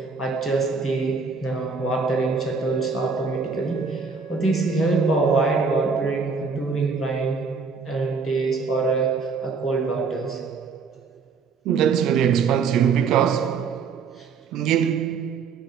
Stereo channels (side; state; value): left; quieter; 5.1 dB